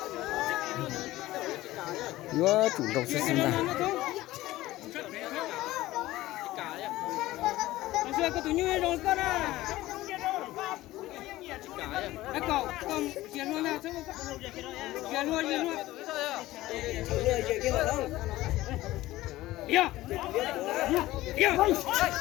vô trùng rau sướng đó cái tụi như rồi con à, cái cậu con chuyển luôn nào, chuyển luôn.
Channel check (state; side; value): quieter; right; 16.8 dB